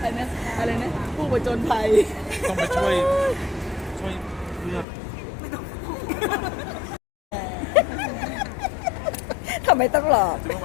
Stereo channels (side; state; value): right; drops out; at 4.9 s